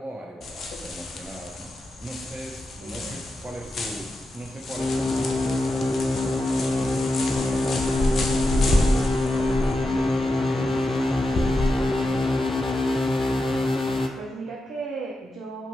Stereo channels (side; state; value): both; normal; correlation 0.89